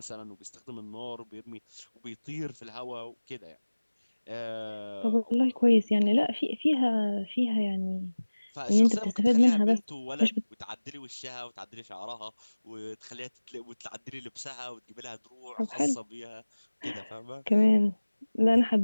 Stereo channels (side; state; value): both; inverted; correlation -1.00